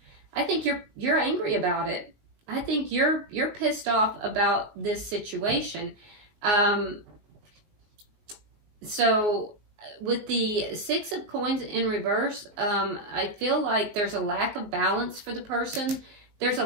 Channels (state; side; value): late; left; 19 ms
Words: I think you're angry about it. I think you're pissed off about this situation. So with the Six of Coins in reverse, I feel like there's a lack of balance for the person. There's a